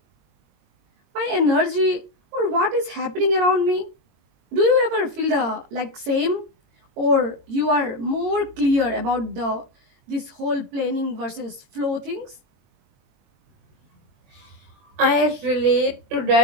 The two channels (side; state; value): left; late; 22 ms